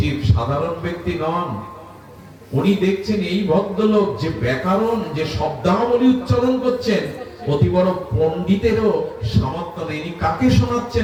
সাধারণ ব্যক্তি নন। উনি দেখছেন এই ভদ্রলোক যে ব্যাকরণ, যে শব্দাবলী উচ্চারণ করছেন, অতি বড় পণ্ডিতেরও সামর্থ্য নেই। কাকে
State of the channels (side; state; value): both; identical; correlation 1.00